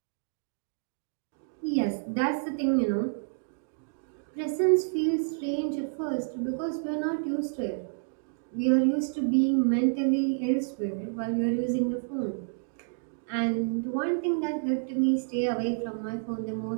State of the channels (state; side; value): silent; left; digital silence